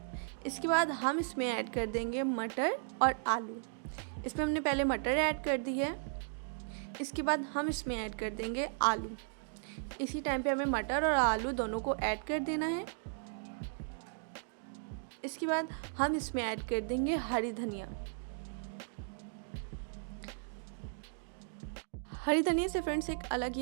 इसके बाद हम इसमें ऐड कर देंगे मटर और आलू। इसमें हमने पहले मटर ऐड कर दी है। इसके बाद हम इसमें ऐड कर देंगे आलू। इसी टाइम पे हमें मटर और आलू दोनों को ऐड कर देना है। इसके बाद हम इसमें ऐड कर देंगे हरी धनिया। हरी धनिया से फ्रेंड्स एक अलग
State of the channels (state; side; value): silent; left; digital silence